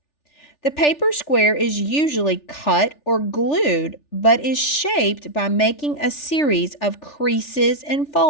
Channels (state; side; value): late; right; 3.4 ms